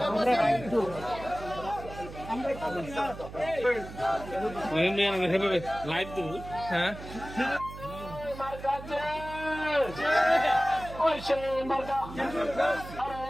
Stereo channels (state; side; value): noise; right; hum, 13 dB below the sound